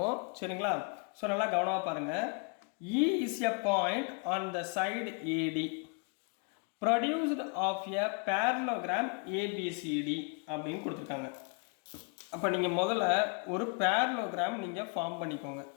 சரிங்களா? ஸோ நல்லா கவனமாக பாருங்கள். E is a point on the side AD produced of a parallelogram ABCD அப்படின்னு கொடுத்துருக்காங்க. அப்போ நீங்கள் முதல்ல ஒரு parallelogram நீங்கள் ஃபார்ம் பண்ணிக்கோங்க.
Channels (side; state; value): right; quieter; 35.2 dB